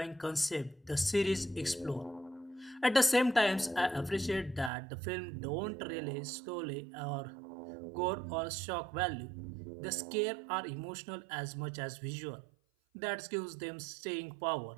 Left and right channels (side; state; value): left; drops out; at 4.7 s